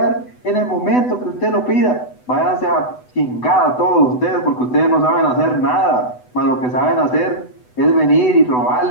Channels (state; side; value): late; right; 8.0 ms